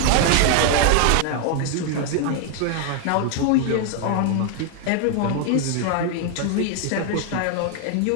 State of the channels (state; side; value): different; both; correlation 0.00